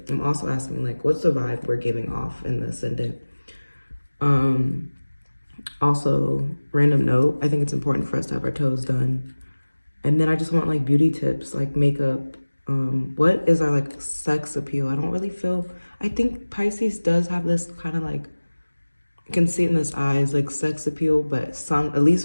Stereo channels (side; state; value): both; inverted; correlation -1.00